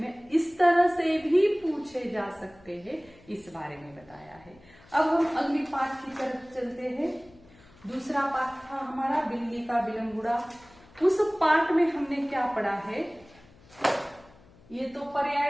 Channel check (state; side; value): noise; left; hum, 26 dB below the sound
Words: इस तरह से भी पूछे जा सकते हैं इस बारे में बताया है। अब हम अगली पाठ की तरफ चलते हैं। दूसरा पाठ था हमारा बिल्ली का बिलंगुड़ा। उस पाठ में हमने क्या पढ़ा है, ये तो